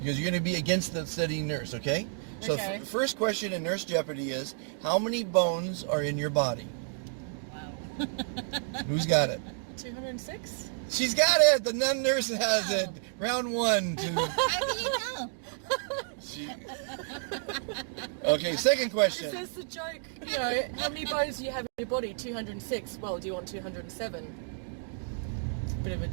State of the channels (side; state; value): left; silent; digital silence